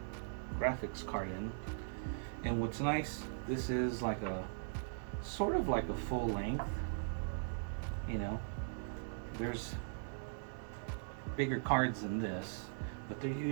graphics card in. And what's nice, this is like a sort of like a full length. You know, there's bigger cards than this, but they're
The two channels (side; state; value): left; silent; digital silence